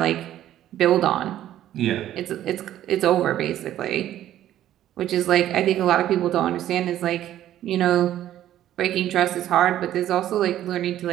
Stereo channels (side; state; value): left; quieter; 12.3 dB